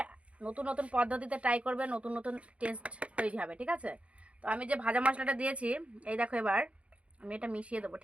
নতুন নতুন পদ্ধতিতে ট্রাই করবে, নতুন নতুন টেস্ট তৈরি হবে, ঠিক আছে? তো আমি যে ভাজা মশলাটা দিয়েছি, এই দেখো এবার আমি এটা মিশিয়ে দেবো,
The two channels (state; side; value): late; left; 0.062 ms